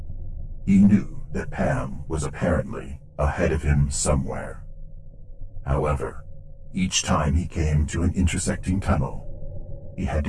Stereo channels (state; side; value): identical; both; correlation 1.00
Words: he knew that Pam was apparently ahead of him somewhere. However, each time he came to an intersecting tunnel, he had